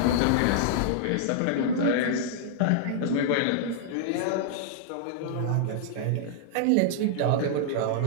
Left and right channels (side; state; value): both; different; correlation -0.01